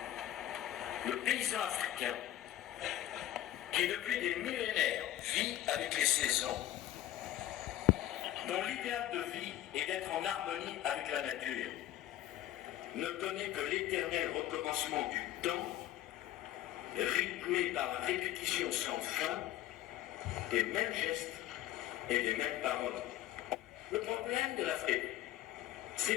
Le paysan africain, qui depuis des millénaires vit avec les saisons, dont l'idéal de vie est d'être en harmonie avec la nature, ne connaît que l'éternel recommencement du temps, rythmé par la répétition sans fin des mêmes gestes et des mêmes paroles. Le problème de l'Afrique,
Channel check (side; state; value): right; quieter; 13.4 dB